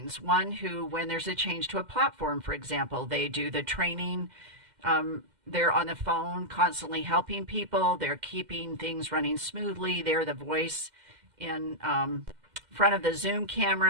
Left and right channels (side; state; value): left; late; 2.1 ms